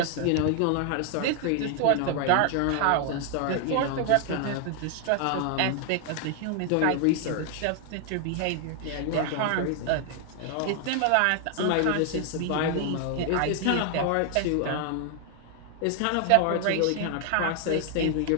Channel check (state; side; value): different; both; correlation 0.00